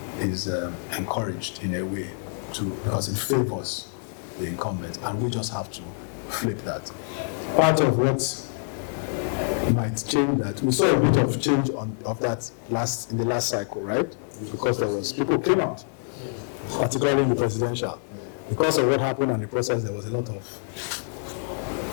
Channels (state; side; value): silent; right; digital silence